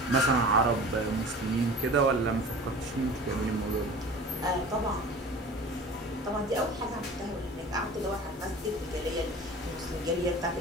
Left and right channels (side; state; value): both; normal; correlation 0.39